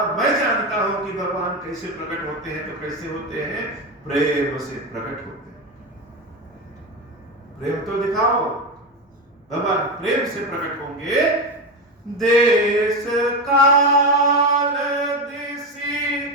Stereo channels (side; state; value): both; normal; correlation 0.16